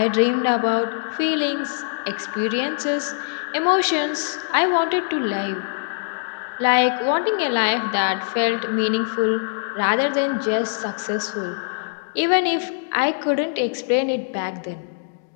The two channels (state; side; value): silent; right; digital silence